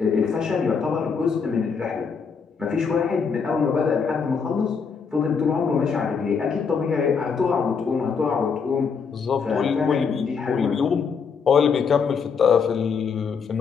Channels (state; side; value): quieter; right; 5.8 dB